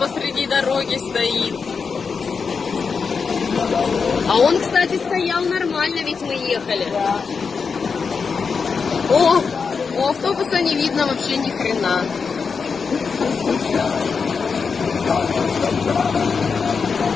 дороги стоит. А он, кстати, стоял нормально, ведь мы ехали. О, у автобуса не видно вообще ни хрена.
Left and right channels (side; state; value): right; quieter; 5.4 dB